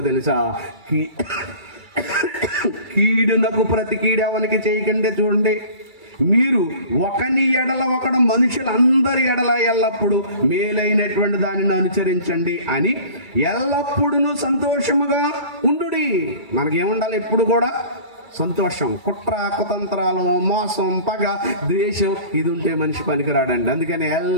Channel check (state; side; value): late; left; 2.3 ms